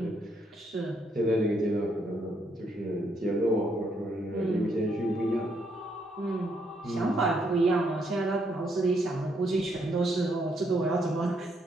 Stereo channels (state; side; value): normal; both; correlation 0.74